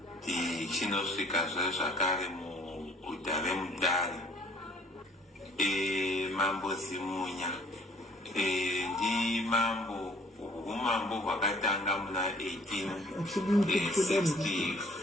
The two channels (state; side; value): normal; both; correlation 0.56